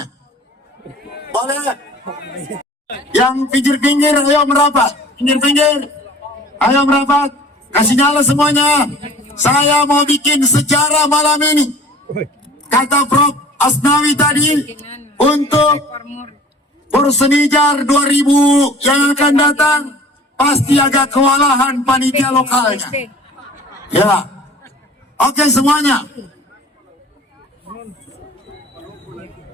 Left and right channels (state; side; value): normal; both; correlation 0.46